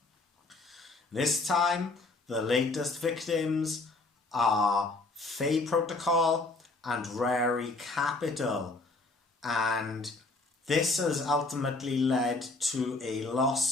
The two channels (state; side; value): quieter; right; 3.3 dB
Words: This time the latest victims are Fei Protocol and Rari Capital, and this has ultimately led to a